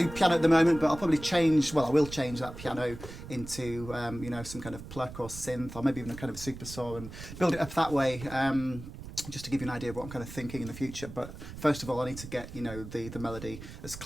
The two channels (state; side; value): noise; right; rumble, 12 dB below the sound